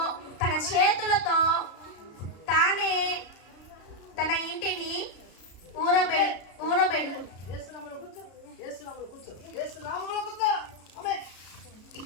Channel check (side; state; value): right; late; 33 ms